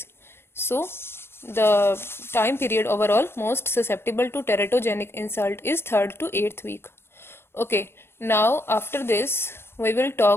So the time period overall most susceptible to teratogenic insult is 3rd to 8th week. Okay, now after this we will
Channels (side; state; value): right; late; 0.12 ms